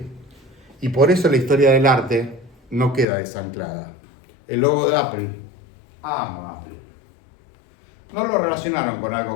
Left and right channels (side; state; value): right; drops out; at 3.1 s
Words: Y por eso la historia del arte no queda desanclada. El logo de Apple, amo Apple. No lo relacionaron con